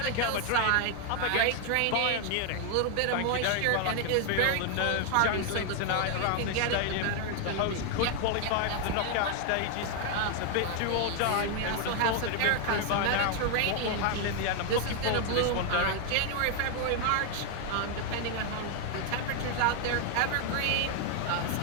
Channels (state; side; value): different; both; correlation 0.00